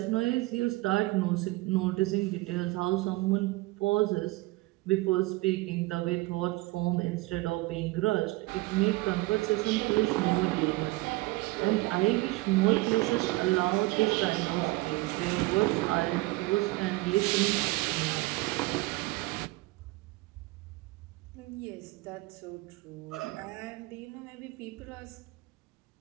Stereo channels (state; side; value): quieter; left; 21.6 dB